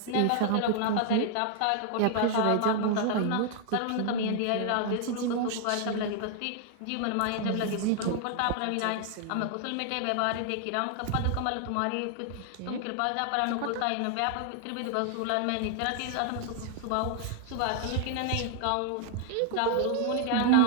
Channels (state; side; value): different; both; correlation 0.00